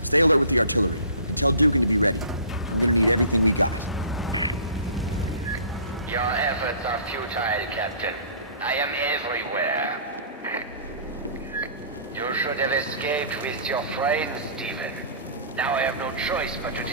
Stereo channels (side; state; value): both; inverted; correlation -0.45